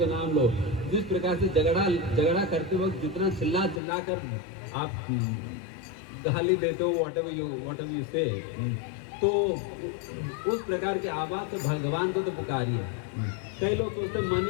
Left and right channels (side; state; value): right; drops out; at 3.8 s